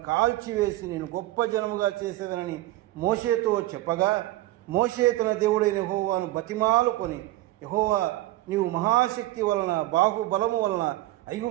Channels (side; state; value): left; quieter; 17.0 dB